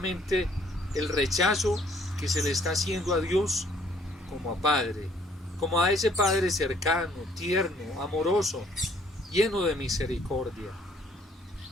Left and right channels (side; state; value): both; normal; correlation 0.62